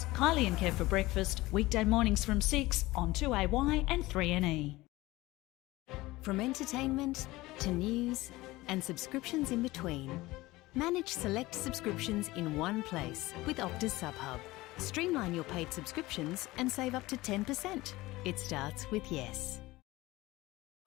Kylie and Kev, for breakfast, weekday mornings from 6 on 2AY and 3NE. From entertainment to news and subscriptions in between, manage select subscriptions in one place with Optus SubHub. Streamline your paid subscriptions and save up to 10%. It starts with yes.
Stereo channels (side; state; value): right; quieter; 19.4 dB